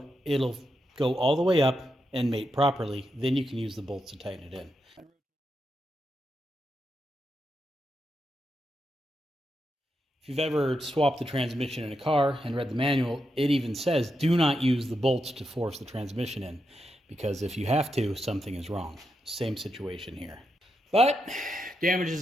it'll go all the way up and mate properly. Then you can use the bolts to tighten it in. If you've ever swapped the transmission in a car and read the manual, it even says do not use the bolts to force the transmission in, because if you have to, something is wrong. Same situation here. But damage is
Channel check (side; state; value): both; normal; correlation 0.85